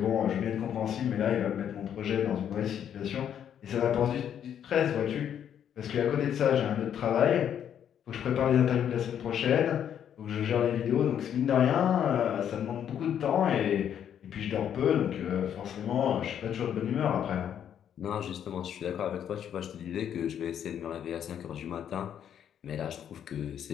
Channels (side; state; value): right; quieter; 9.3 dB